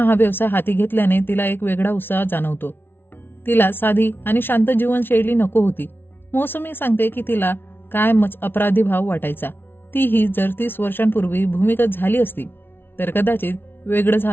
हा व्यवसाय हाती घेतल्याने तिला एक वेगळा उत्साह जाणवतो. तिला साधी आणि शांत जीवनशैली नको होती. मौसमी सांगते की तिला कायमच अपराधी भाव वाटायचा. तीही जर 30 वर्षांपूर्वी भूमिगत झाली असती तर कदाचित वेगळं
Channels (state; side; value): late; right; 0.11 ms